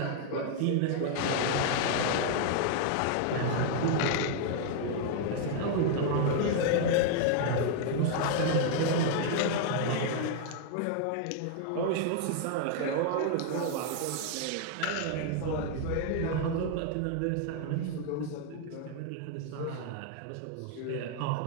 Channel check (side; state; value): both; different; correlation 0.00